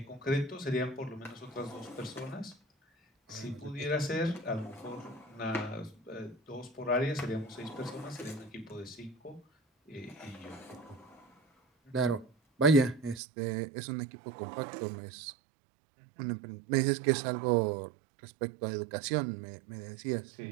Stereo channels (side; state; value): left; drops out; at 13.2 s